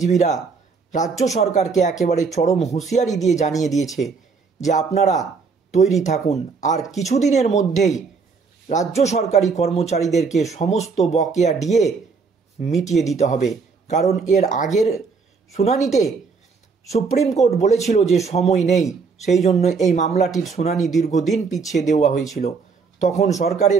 রাজ্য সরকারকে একেবারে চরম হুঁশিয়ারি দিয়ে জানিয়ে দিয়েছে যে আপনারা তৈরি থাকুন, আর কিছুদিনের মধ্যেই রাজ্য সরকারি কর্মচারীদেরকে সমস্ত বকেয়া ডিএ মিটিয়ে দিতে হবে। কারণ এর আগের শুনানিতে সুপ্রিম কোর্ট বলেছিল যে সময় নেই, সেই জন্য এই মামলাটির শুনানি দীর্ঘদিন পিছিয়ে দেওয়া হয়েছিল। তখন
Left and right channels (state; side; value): quieter; left; 5.0 dB